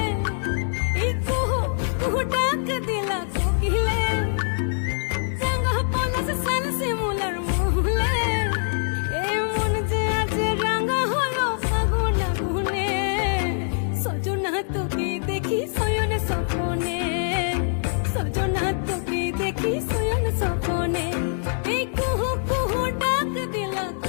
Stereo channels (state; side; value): silent; right; digital silence